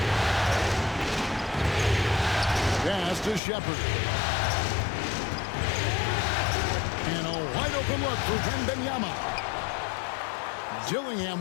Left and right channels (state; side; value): drops out; right; at 3.4 s